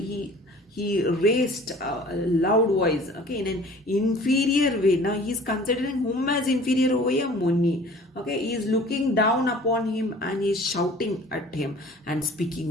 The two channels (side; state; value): both; normal; correlation 0.47